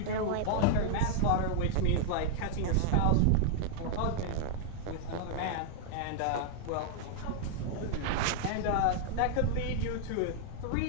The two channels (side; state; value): both; different; correlation -0.01